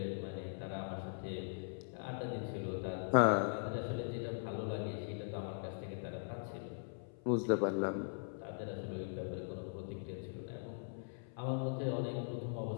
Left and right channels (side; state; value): right; silent; 51 dB below the other